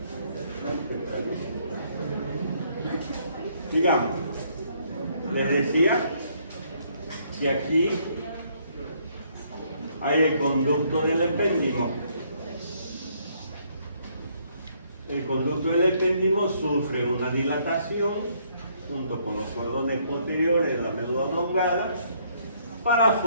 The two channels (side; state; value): both; inverted; correlation -0.68